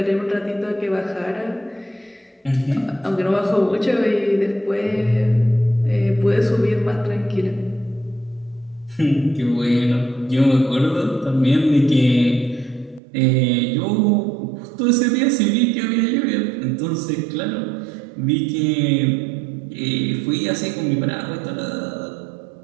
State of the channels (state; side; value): drops out; left; at 13.0 s